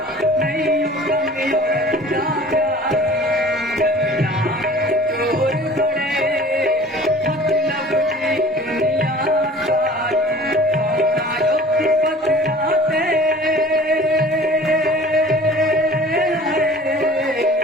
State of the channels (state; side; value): normal; both; correlation 0.46